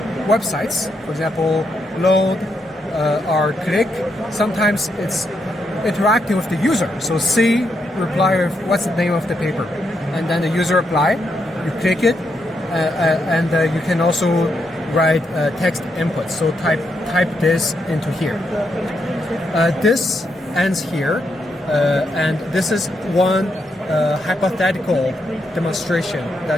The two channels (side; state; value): both; normal; correlation 0.80